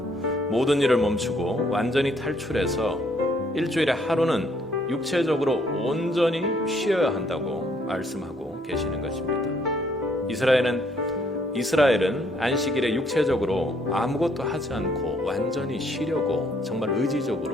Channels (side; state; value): both; normal; correlation 0.67